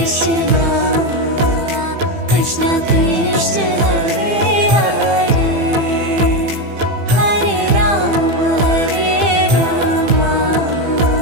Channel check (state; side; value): late; left; 15 ms